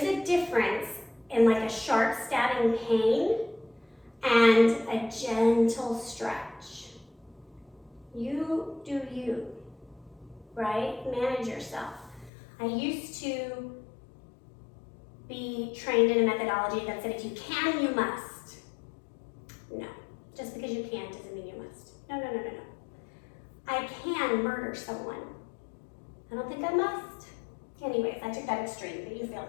a difference in like a sharp stabbing pain and a gentle stretch. You do you, right? Manage yourself. I used to be trained in a methodology that said if you can, you must. No, just because you can doesn't mean you must. No, no, no, no, no. I can murder someone. I don't think I must. Anyways, I took that extreme, but you feel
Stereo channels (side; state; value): right; drops out; at 12.3 s